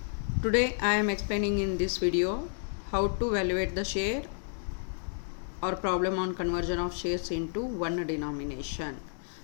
Today I am explaining in this video how to evaluate the share or problem on conversion of shares into one denomination.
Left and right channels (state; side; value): silent; right; digital silence